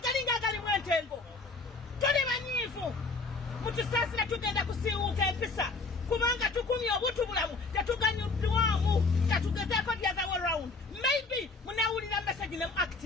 agalimu entengo. Tuli banyiivu mutusaasira tugenda kusiiwuuka empisa kubanga tukumye obutubulamu tetuganyuddwamu katugezeeko the other way round. Maybe munawulira message ne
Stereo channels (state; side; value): quieter; right; 3.8 dB